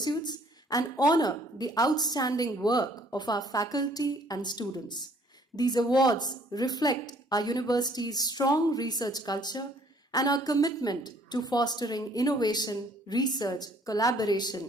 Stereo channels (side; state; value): both; normal; correlation 0.60